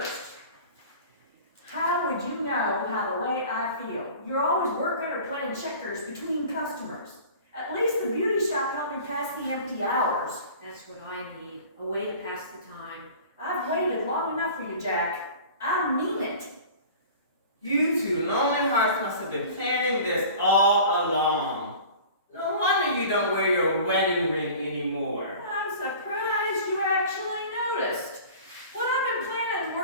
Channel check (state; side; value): inverted; both; correlation -0.42